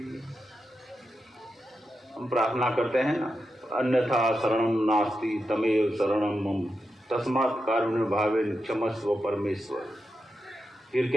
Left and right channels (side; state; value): both; normal; correlation 0.88